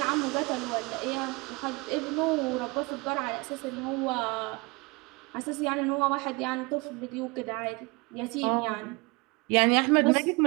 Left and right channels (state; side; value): quieter; left; 26.9 dB